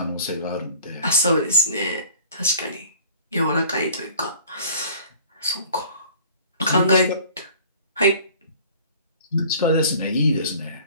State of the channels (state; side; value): inverted; both; correlation -0.49